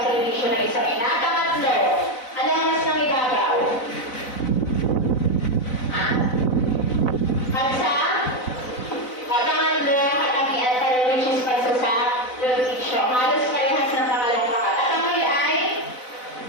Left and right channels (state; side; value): late; right; 4.0 ms